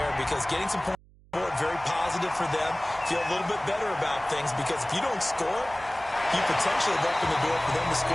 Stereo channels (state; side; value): noise; right; hum, 27 dB below the sound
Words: because getting some points on the board, very positive for them. Feel a little bit better about things because if you don't score, you potentially have opened the door for them to